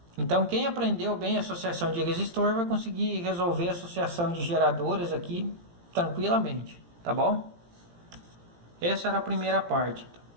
Então, quem aprendeu bem a associação de resistor vai conseguir resolver a associação de geradores aqui tranquilamente, tá bom? Essa era a primeira parte.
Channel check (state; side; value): late; left; 17 ms